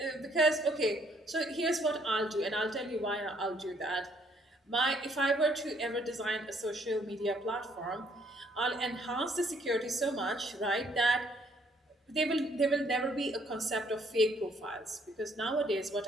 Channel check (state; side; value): normal; both; correlation 0.66